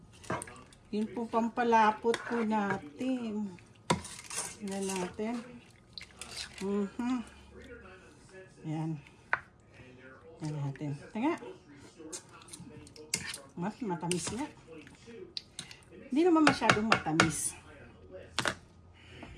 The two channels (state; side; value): identical; both; correlation 1.00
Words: Yun po pampalapot po natin. Tignan natin. Yan. Yan natin. Tanga. Matamis nga. Hindi naman masyadong matamis.